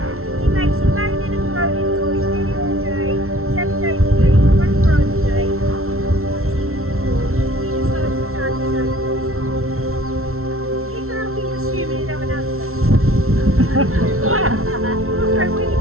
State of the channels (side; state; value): left; late; 0.62 ms